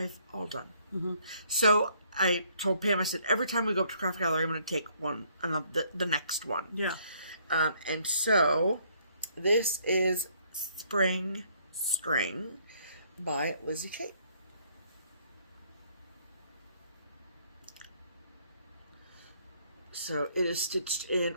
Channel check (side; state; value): both; inverted; correlation -0.65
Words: all done. So I told Pam, I said, every time we go up to Craft Gallery, I'm going to take one, the next one. Yeah. And so this is Spring String by Lizzie Kate. So it is stitched in